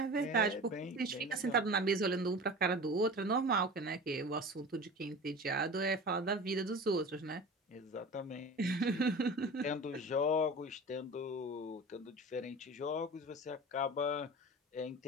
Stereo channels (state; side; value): normal; both; correlation 0.35